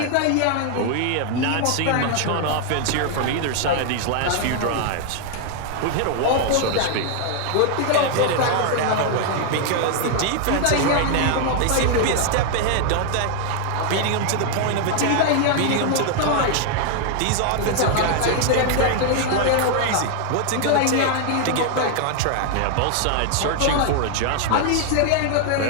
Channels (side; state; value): both; different; correlation 0.00